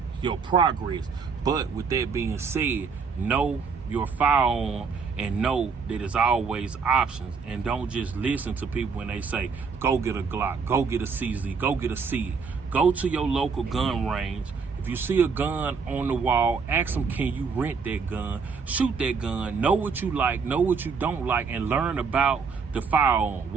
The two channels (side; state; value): left; quieter; 5.3 dB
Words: your progress. But with that being said, know your firearm and know that there's always options, and don't just listen to people when they say go get a Glock, go get a CZ, go get a C. Go to your local gun range. If you see a gun on the wall, ask them, can you rent that gun? Shoot that gun. Know what you like, know what you don't like, and learn about the firearm.